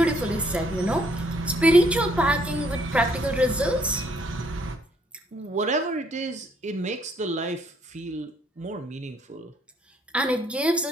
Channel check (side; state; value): both; normal; correlation 0.67